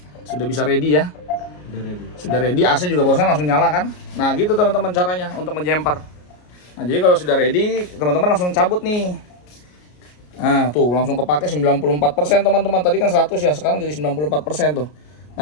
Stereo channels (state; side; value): late; right; 33 ms